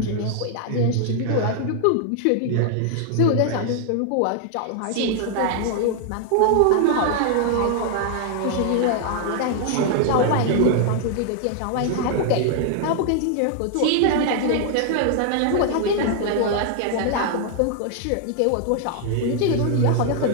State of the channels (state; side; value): different; both; correlation 0.00